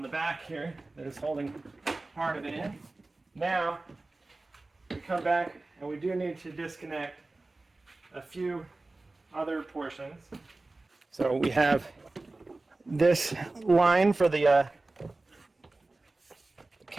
the back here that is holding part of it in. Now we come back and we do need to disconnect a few other portions. So we have this line for the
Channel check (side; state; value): left; quieter; 3.1 dB